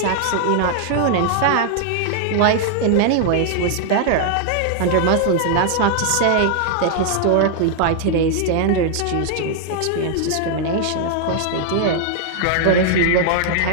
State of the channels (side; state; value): both; different; correlation 0.00